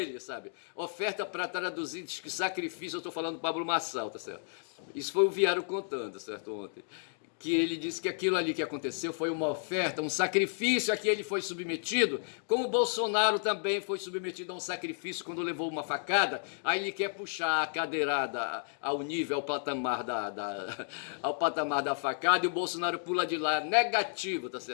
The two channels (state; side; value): silent; right; digital silence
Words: sabe? Oferta para traduzir, diz que sacrifício, eu estou falando do Pablo Marçal, tá certo? Isso foi o Viário contando, certo, ontem. Que ele disse que aquilo ali que aconteceu foi uma oferta, um sacrifício a que ele foi submetido, como o Bolsonaro também foi submetido a um sacrifício quando levou uma facada, aí ele quer puxar a cadeirada ao nível, ao patamar da facada, e o Bolsonaro pula de lá, negativo, tá